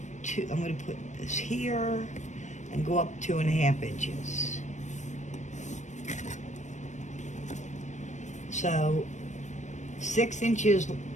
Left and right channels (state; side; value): late; right; 0.35 ms